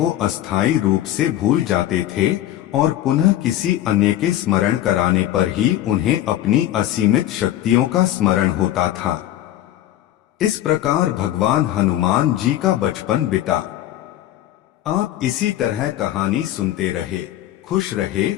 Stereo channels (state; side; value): quieter; right; 13.1 dB